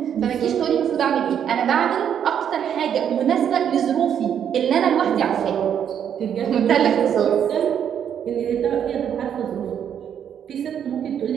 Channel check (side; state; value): left; quieter; 8.8 dB